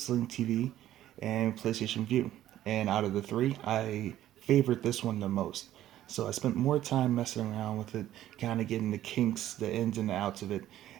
TV, and PlayStation Vue. And out of the 3, I favored this one the most. So I spent more time messing around with it, kind of getting the kinks, the ins and the outs of it,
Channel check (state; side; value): quieter; left; 12.9 dB